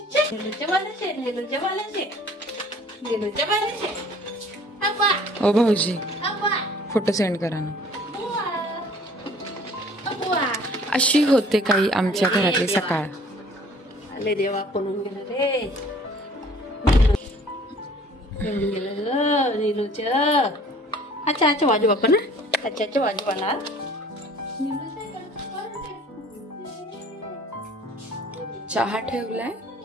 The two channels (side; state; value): both; normal; correlation 0.52